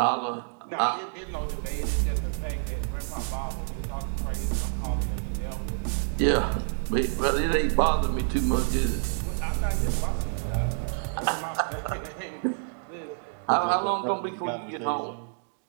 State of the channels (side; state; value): left; silent; 59 dB below the other